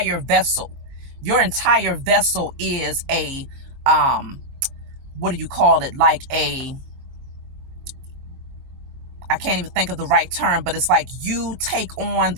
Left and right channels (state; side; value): late; left; 22 ms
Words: vessel. Your entire vessel is a, what do you call it? Like I can't even think of the right term, but it's like you take on